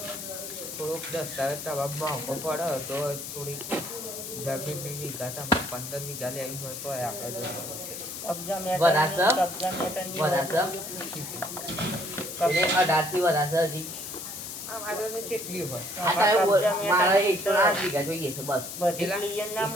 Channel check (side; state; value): left; noise; hiss, 8 dB below the sound